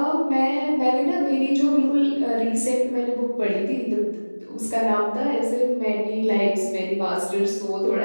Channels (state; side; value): inverted; both; correlation -1.00